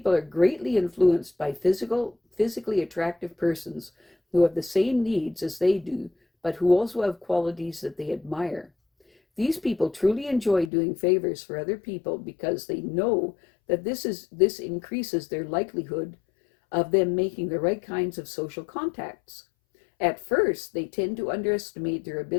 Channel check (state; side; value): drops out; right; at 10.7 s